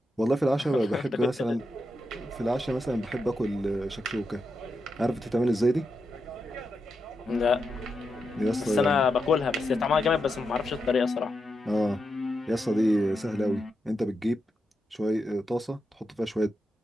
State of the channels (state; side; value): normal; both; correlation 0.86